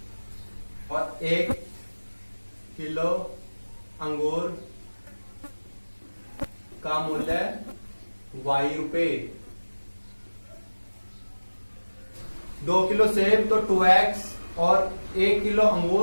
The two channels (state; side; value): inverted; both; correlation -1.00